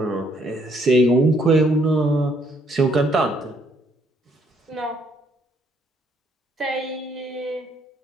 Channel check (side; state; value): both; normal; correlation 0.69